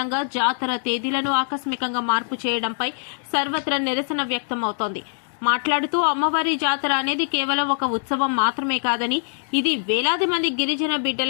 జాతర తేదీలను ఆకస్మికంగా మార్పు చేయడంపై సర్వత్రా నిరసన వ్యక్తమవుతోంది. మాట్లాడుతూ అమ్మవారి జాతర అనేది కేవలం ఒక ఉత్సవం మాత్రమే కాదని, ఇది వేలాది మంది గిరిజన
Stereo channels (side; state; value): right; silent; digital silence